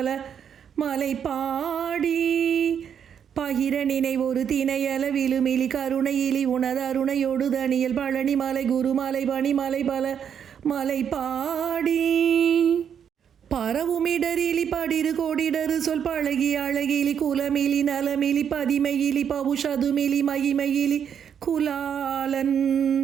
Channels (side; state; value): left; quieter; 8.1 dB